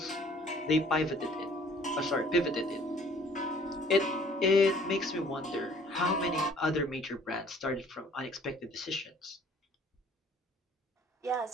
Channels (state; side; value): normal; both; correlation 0.55